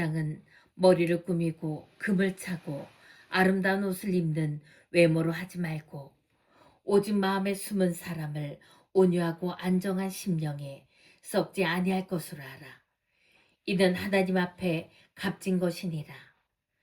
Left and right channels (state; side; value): identical; both; correlation 1.00